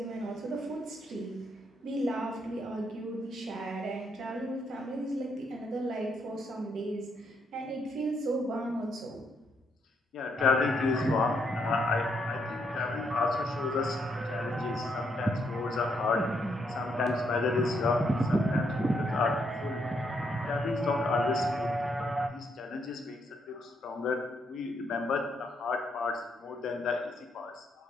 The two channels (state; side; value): normal; both; correlation 0.76